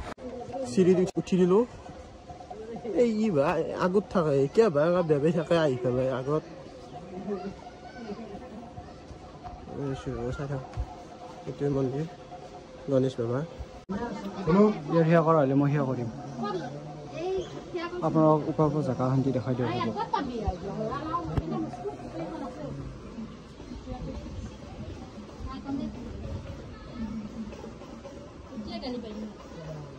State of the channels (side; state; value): both; identical; correlation 1.00